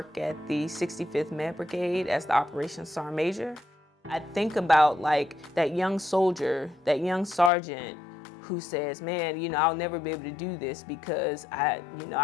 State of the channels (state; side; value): drops out; right; at 7.5 s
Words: at the 65th Med Brigade as the Operations Sergeant Major. I think about that young soldier, that young sergeant who says, man, I'll never be able to do this because I